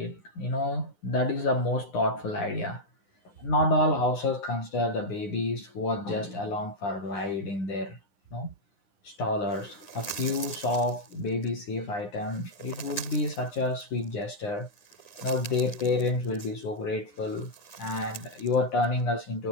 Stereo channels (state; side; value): late; right; 9.8 ms